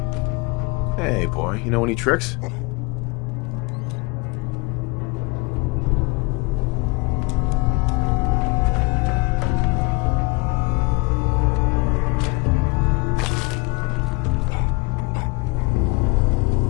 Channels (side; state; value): right; quieter; 27.2 dB